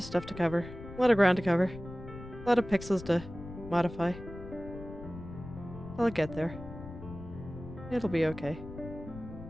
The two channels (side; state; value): left; noise; rumble, 13 dB below the sound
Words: stuff to cover. A lot of ground to cover. A lot of pixels to modify. I'll get there. It'll be okay.